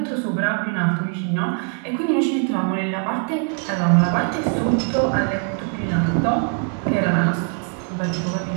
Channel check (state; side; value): quieter; left; 39.5 dB